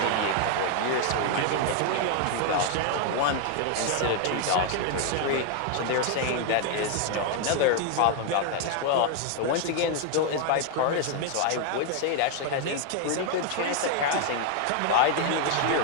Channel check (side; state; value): both; different; correlation 0.00